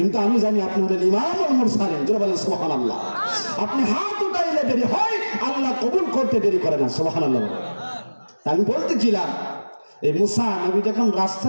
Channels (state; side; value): inverted; both; correlation -1.00